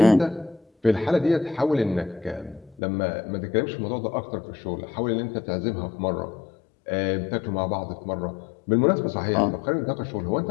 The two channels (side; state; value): right; drops out; at 2.8 s